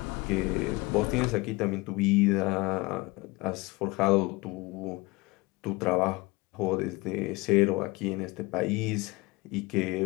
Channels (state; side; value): quieter; right; 23.3 dB